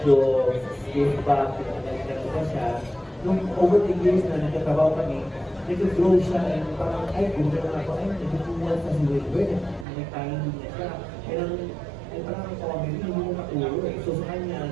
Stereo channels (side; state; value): left; drops out; at 9.9 s